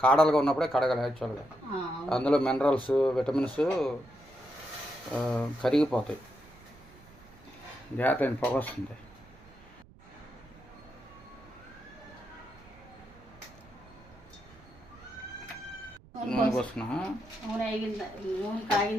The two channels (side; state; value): right; noise; rumble, 24 dB below the sound